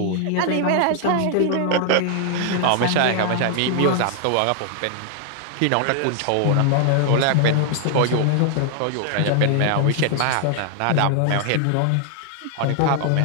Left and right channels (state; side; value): different; both; correlation 0.00